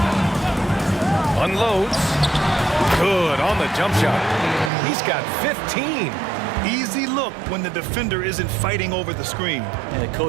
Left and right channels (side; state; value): left; drops out; at 4.7 s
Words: Unloads. Good on the jump shot. He's got 15. Easy look when the defender isn't fighting over the screen. And the